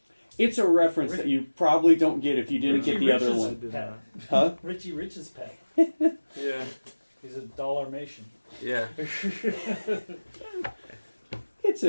It's a reference that you probably don't get if you didn't get the other Rich's one. did pet. Huh? Richie Rich's pet. yeah. He's a dollar-mation. Yeah. It's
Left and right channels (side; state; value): both; inverted; correlation -1.00